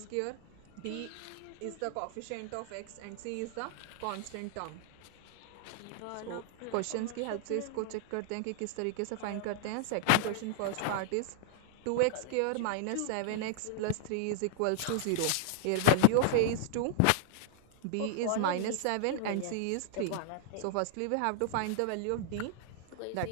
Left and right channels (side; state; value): both; different; correlation -0.01